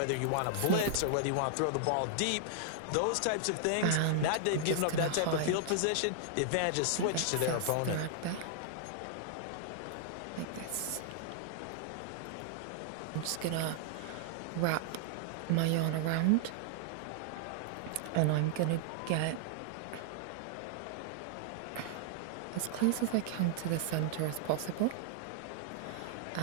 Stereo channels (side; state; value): both; different; correlation -0.01